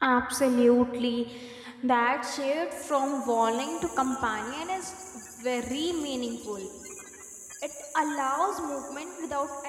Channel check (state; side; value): identical; both; correlation 1.00